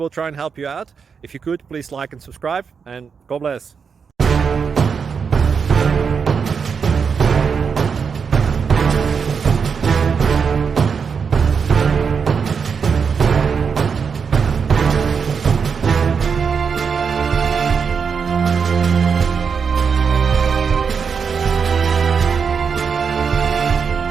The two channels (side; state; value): left; quieter; 6.1 dB